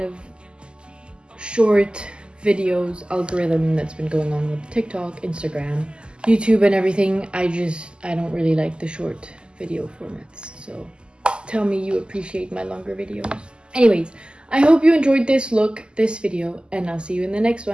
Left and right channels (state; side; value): late; left; 0.049 ms